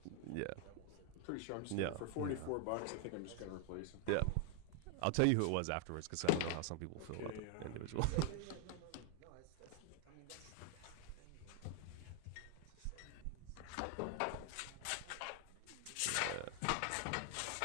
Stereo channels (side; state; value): both; different; correlation 0.00